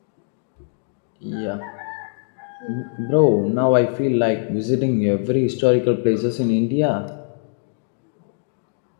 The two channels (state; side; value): silent; right; digital silence